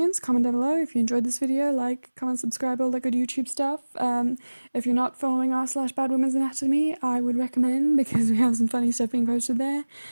comment down below. If you enjoyed this video, like, comment, subscribe, all that good YouTube stuff. If you're not following r/Bad Women's Anatomy, I would recommend, because we have some funny stuff being posted there.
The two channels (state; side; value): inverted; both; correlation -1.00